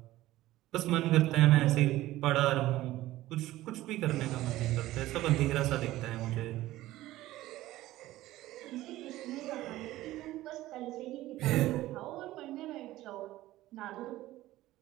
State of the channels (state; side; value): quieter; left; 16.1 dB